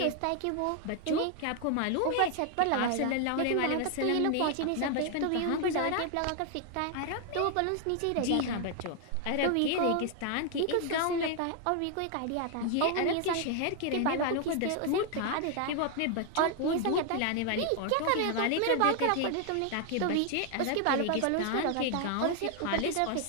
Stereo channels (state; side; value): different; both; correlation 0.00